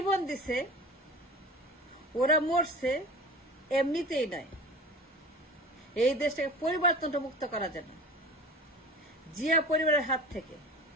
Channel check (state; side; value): normal; both; correlation 0.37